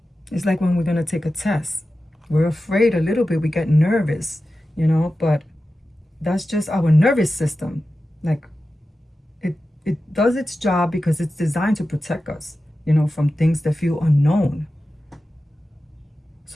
It's like when we're going to take a test. We're afraid a little bit, we get nervous, you know, but that's just our nervous system. Like it does its job because it's designed to protect us, you know, from things that feel unknown.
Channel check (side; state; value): both; normal; correlation 0.93